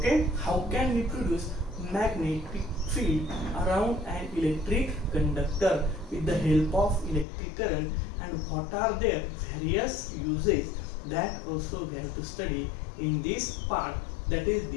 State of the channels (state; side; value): drops out; right; at 7.2 s